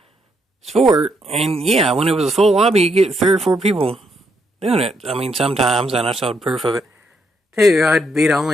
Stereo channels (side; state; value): both; normal; correlation 0.76